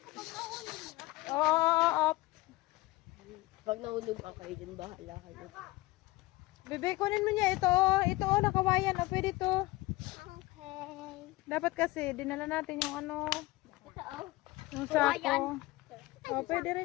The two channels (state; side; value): quieter; right; 20.2 dB